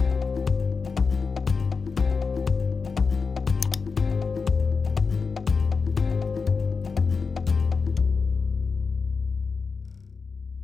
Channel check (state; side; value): quieter; right; 4.9 dB